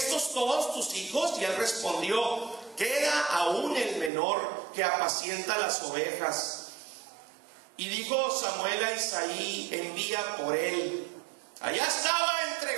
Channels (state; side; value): drops out; left; at 4.1 s